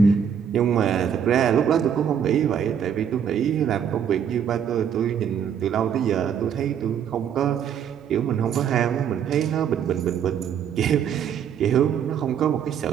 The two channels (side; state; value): left; quieter; 8.2 dB